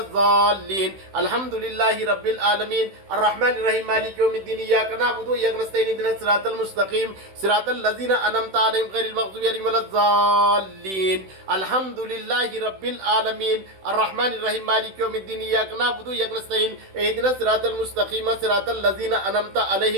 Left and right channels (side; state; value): left; late; 16 ms